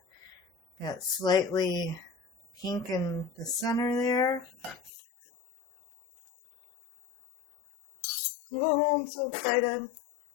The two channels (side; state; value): right; drops out; at 4.9 s